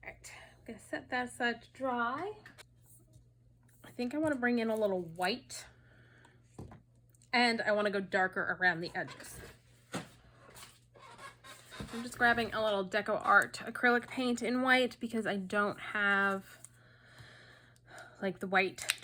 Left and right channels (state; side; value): identical; both; correlation 1.00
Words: right, I'm gonna set that aside to dry. I think I want to bring in a little white, and I want to go darker around the edges. I'm just grabbing a little DecoArt acrylic paint in white because I don't have like the white